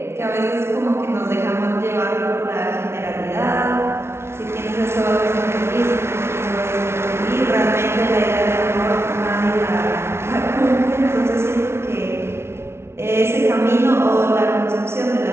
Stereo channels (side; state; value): left; late; 0.12 ms